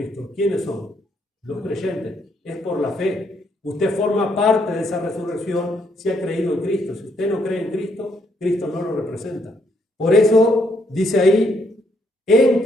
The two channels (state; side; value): normal; both; correlation 0.73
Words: ¿quiénes son? Los creyentes. Es por la fe. Usted forma parte de esa resurrección si ha creído en Cristo. Si usted no cree en Cristo, Cristo no lo representa. Por eso dice ahí, en